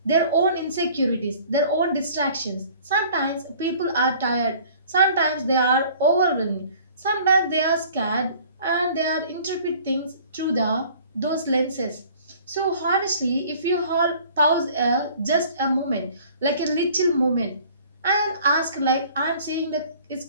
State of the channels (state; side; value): inverted; both; correlation -0.51